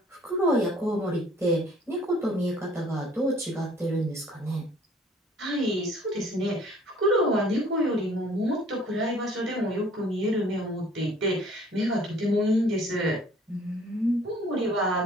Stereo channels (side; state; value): both; normal; correlation 0.55